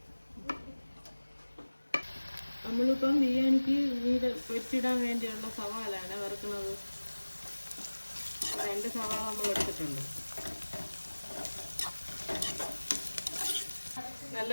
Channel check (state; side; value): inverted; both; correlation -1.00